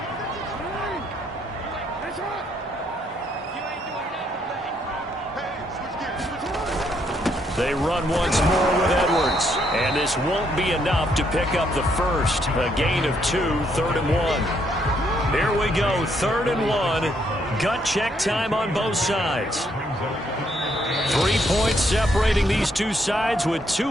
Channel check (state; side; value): normal; both; correlation 0.72